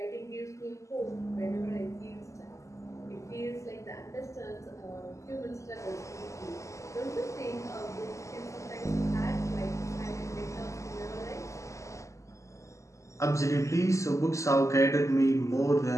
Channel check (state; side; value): late; right; 0.15 ms